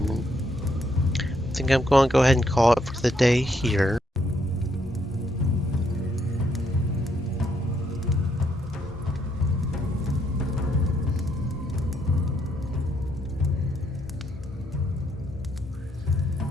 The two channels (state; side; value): normal; both; correlation 0.74